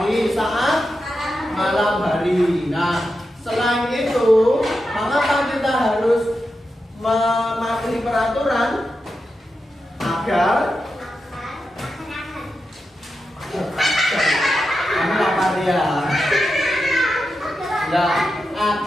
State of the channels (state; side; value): normal; both; correlation 0.89